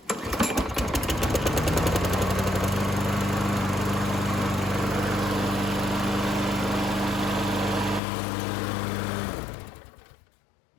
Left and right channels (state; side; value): drops out; right; at 8.0 s